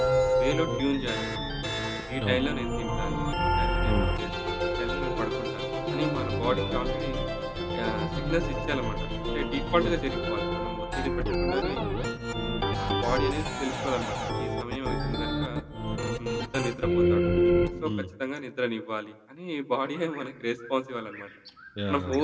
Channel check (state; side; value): identical; both; correlation 1.00